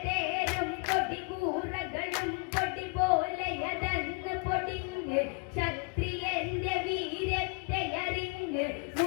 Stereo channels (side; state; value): right; quieter; 32.3 dB